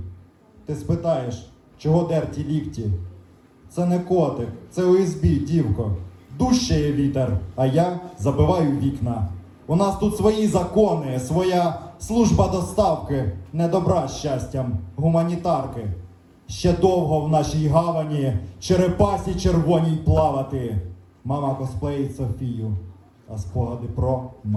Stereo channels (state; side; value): identical; both; correlation 1.00